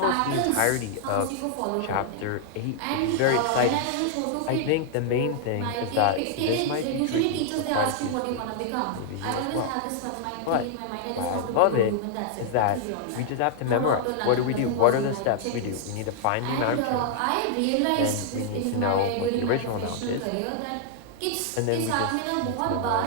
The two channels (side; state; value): both; different; correlation -0.01